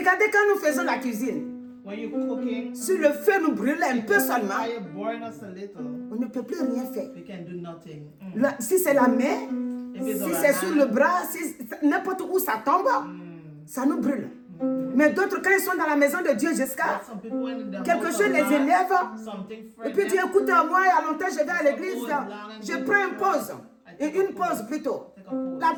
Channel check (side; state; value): both; identical; correlation 1.00